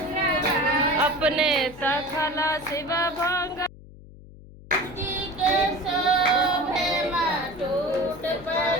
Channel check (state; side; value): noise; left; hum, 19 dB below the sound